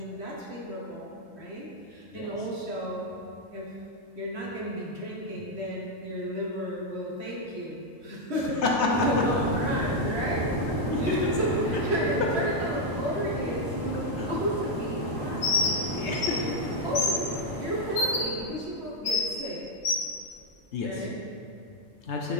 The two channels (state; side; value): normal; both; correlation 0.00